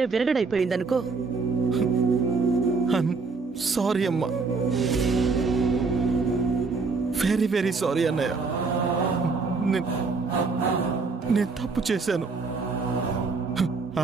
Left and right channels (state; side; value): quieter; left; 4.3 dB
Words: విరగడైపోయిందనుకో. సారీ అమ్మా, వెరీ వెరీ సారీ అన్నయ్య. నేను తప్పు చేశాను.